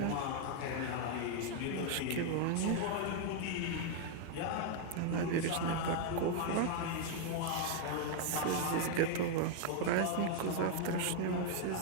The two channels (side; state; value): both; different; correlation 0.00